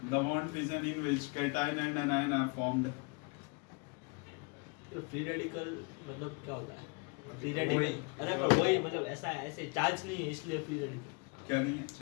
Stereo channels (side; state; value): right; quieter; 32.5 dB